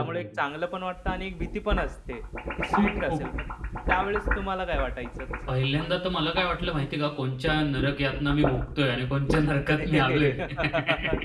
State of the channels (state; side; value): identical; both; correlation 1.00